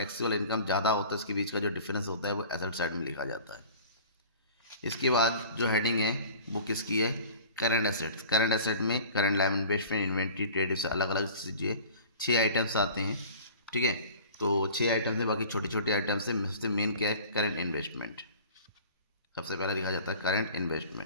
इनकम ज़्यादा होता है, इसके बीच का जो डिफरेंस होता है वो एसेट साइड में लिखा जाता है। इसके बाद जो हेडिंग है वो किसकी है, करंट एसेट्स। करंट एसेट में current live investment, inventory, trade, से अलग अलग चीज़ें 6 आइटम्स आते हैं, ठीक है। तो 6 आइटम्स है, बाकी छोटे छोटे आइटम्स है। सबसे मेन क्या है, करंट इन्वेस्टमेंट। सबसे पहला लिखा जाता है करंट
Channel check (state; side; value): inverted; both; correlation -0.42